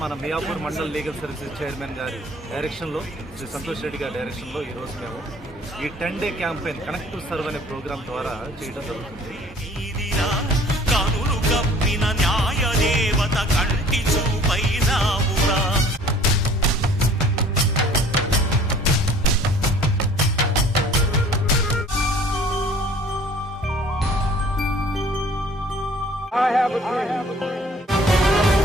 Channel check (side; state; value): both; normal; correlation 0.52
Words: మన Miyapur mandal legal services chairman గారి డైరెక్షన్లో, శ్రీ సంతోష్ రెడ్డి గారి డైరెక్షన్లో ఈరోజు మేము ఈ 10 day campaign connect to serve అనే ప్రోగ్రామ్ ద్వారా చేయడం జరుగుతుంది.